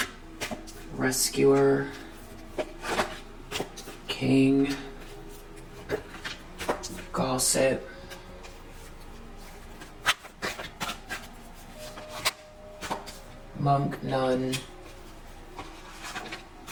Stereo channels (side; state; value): both; identical; correlation 1.00